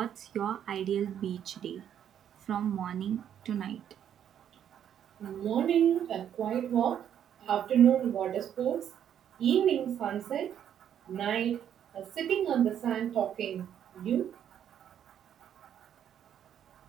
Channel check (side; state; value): left; quieter; 9.6 dB